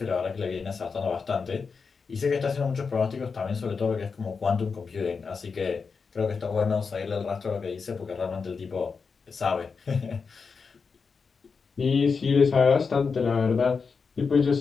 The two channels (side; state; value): right; quieter; 5.2 dB